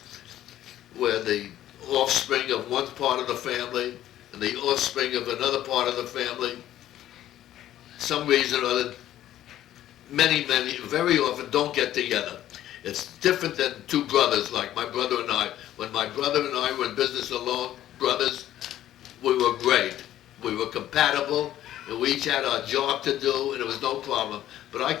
where the offspring of one part of the family and the offspring of another part of the family. Some reason or other, many, very often don't get together. It's different than two brothers, like my brother and I. When my brother and I were in business alone, brothers, we were great. We were compatible, and we each had our job to do, and it was no problem. But I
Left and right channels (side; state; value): right; quieter; 12.7 dB